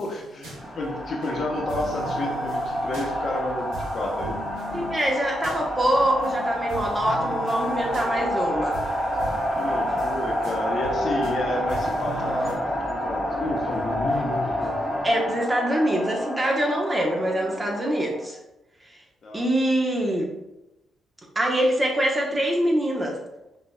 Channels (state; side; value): normal; both; correlation 0.83